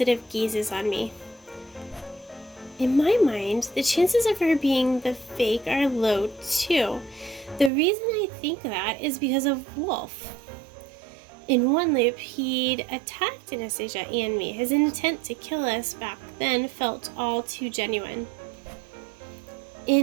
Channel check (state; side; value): drops out; left; at 7.7 s